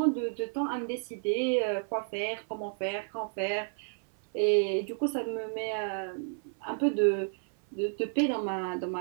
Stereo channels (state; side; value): silent; left; 56 dB below the other